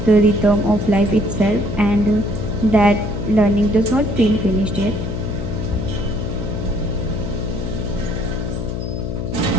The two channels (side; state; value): left; noise; hum, 4 dB below the sound